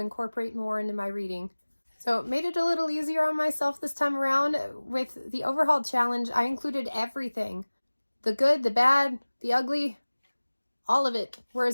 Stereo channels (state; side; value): inverted; both; correlation -1.00